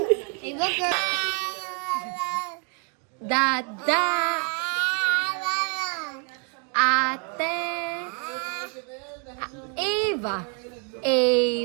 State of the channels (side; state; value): left; quieter; 35.4 dB